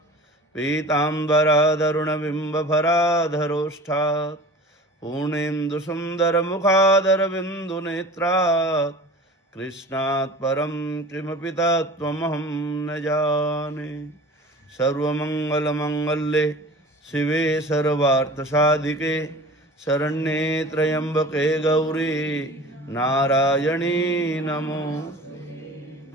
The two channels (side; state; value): both; normal; correlation 0.40